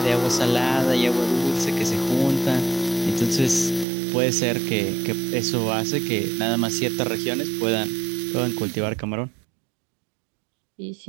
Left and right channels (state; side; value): drops out; left; at 3.9 s